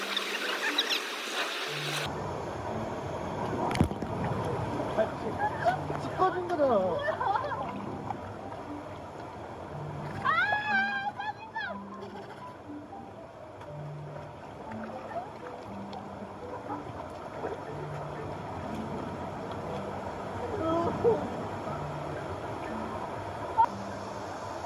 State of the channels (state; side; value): identical; both; correlation 1.00